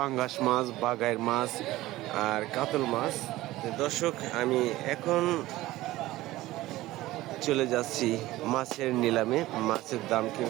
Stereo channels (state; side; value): quieter; left; 17.2 dB